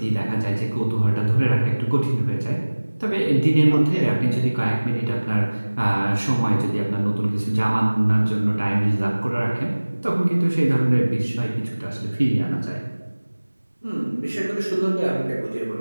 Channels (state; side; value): inverted; both; correlation -1.00